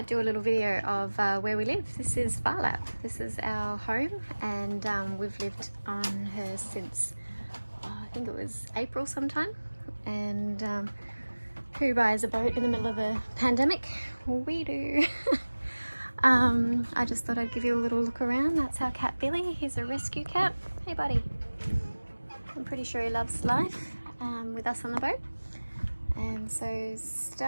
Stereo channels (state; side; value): inverted; both; correlation -1.00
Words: do a little video of where we live. This is Phar Lap. This is our home, and we've lived on her since I think it was April sometime. And who buys a boat in the middle of a pandemic? We do. I just thought I'd give you a little look around. That's our cat Billy. He's a rescue cat. Hey buddy. I'm pretty sure he loves life with us on the boat. And so